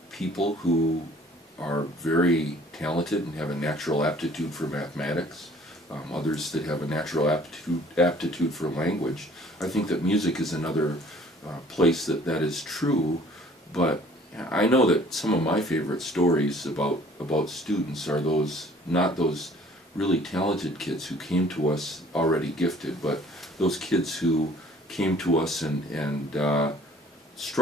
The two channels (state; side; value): normal; both; correlation 0.54